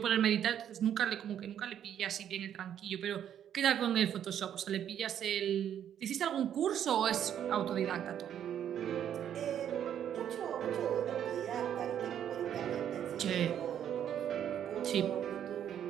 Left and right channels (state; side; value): quieter; left; 9.7 dB